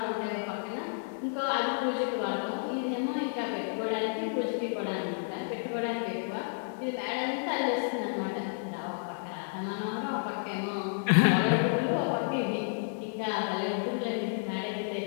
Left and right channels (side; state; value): right; silent; digital silence